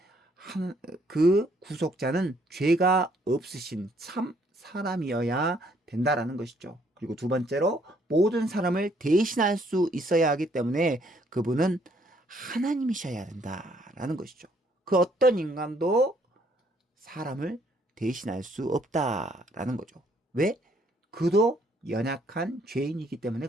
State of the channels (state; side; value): normal; both; correlation 0.66